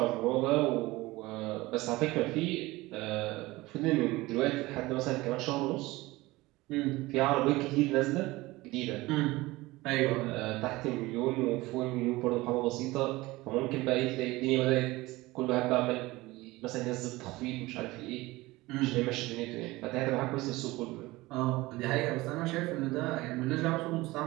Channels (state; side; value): quieter; left; 20.1 dB